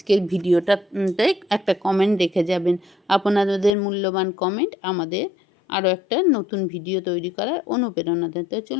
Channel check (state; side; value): drops out; right; at 3.8 s